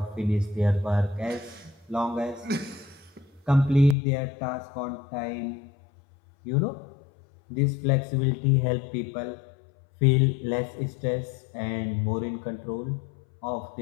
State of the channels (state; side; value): drops out; right; at 4.0 s